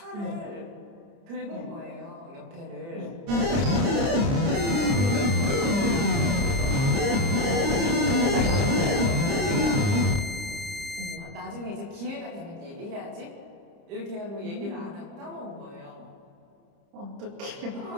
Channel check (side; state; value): left; late; 30 ms